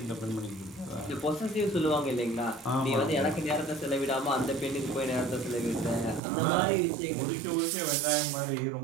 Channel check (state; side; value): drops out; left; at 6.2 s